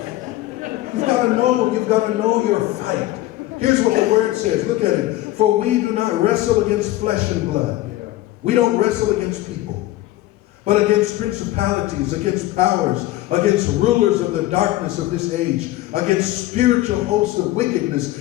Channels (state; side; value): quieter; right; 16.3 dB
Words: You've got to know your fight. Here's what the word says. Look at it. For we do not wrestle against flesh and blood. We don't wrestle against people, but against principalities, against powers, against rulers of the darkness of this age, against spiritual hosts of wickedness